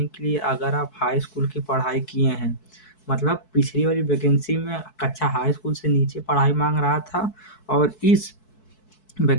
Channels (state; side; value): late; right; 4.6 ms